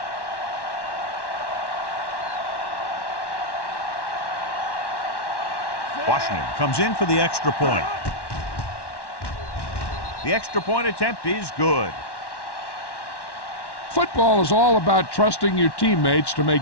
Washington comes in for the extra point. The extra point attempt is good. Football is all about trusting your teammates to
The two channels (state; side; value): late; right; 1.1 ms